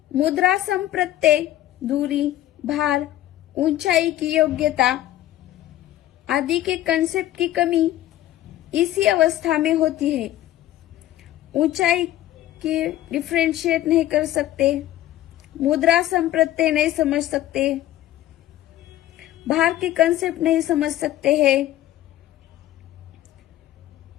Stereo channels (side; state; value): right; quieter; 13.9 dB